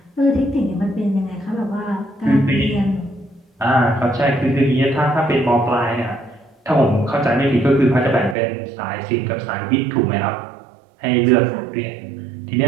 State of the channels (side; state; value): left; drops out; at 8.3 s